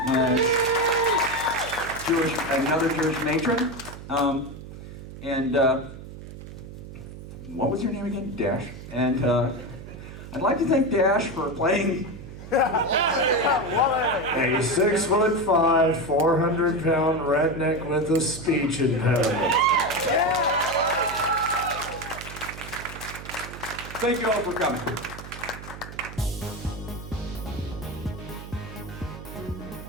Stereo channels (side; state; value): right; noise; hum, 13 dB below the sound